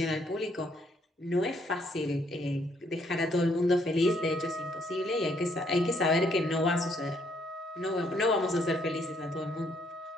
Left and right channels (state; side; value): normal; both; correlation 0.70